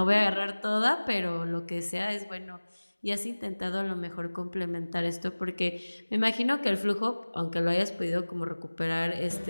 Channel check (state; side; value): inverted; both; correlation -1.00